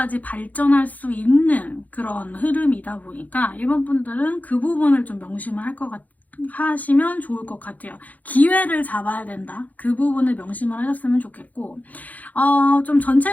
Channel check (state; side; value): late; right; 0.078 ms